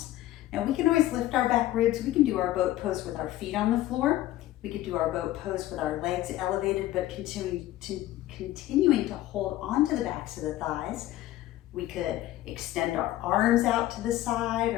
Now we can always lift our back ribs. We can do our boat pose with our feet on the floor. We could do our boat pose with our legs elevated, but continuing to hold onto the backs of the thighs. We could extend our arms out to the side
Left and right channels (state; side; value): quieter; right; 14.9 dB